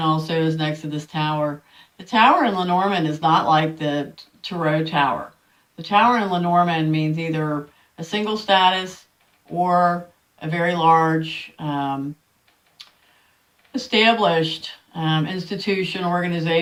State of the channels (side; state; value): both; identical; correlation 1.00